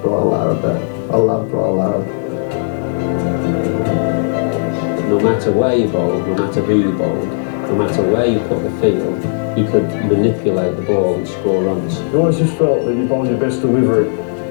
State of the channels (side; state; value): right; silent; digital silence